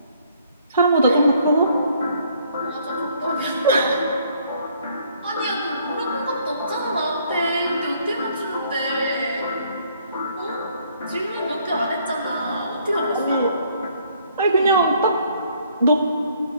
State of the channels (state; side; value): inverted; both; correlation -0.64